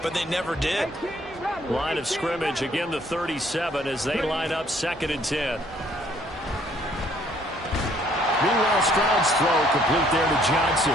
but they never did. Line of scrimmage, again the 37 as they line up 2nd and 10. Meanwhile, Stroud's throw complete there to Johnson.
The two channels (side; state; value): both; normal; correlation 0.63